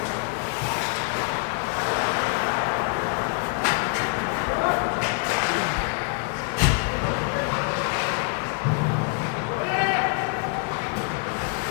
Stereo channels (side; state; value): right; quieter; 36.0 dB